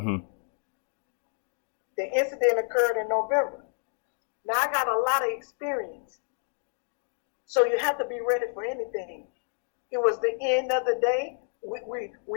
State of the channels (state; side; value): silent; right; 58 dB below the other